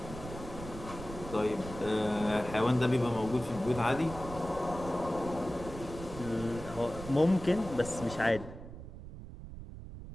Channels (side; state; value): right; noise; rumble, 12 dB below the sound